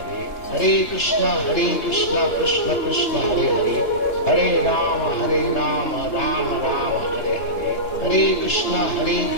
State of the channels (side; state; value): right; late; 3.3 ms